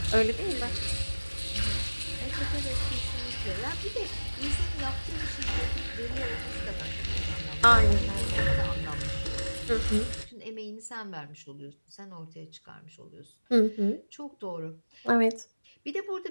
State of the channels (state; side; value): inverted; both; correlation -1.00